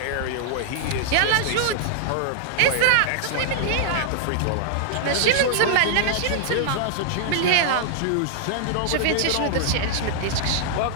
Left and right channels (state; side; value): different; both; correlation -0.01